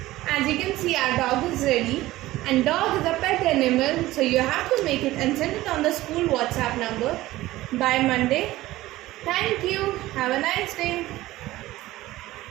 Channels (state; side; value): quieter; left; 16.9 dB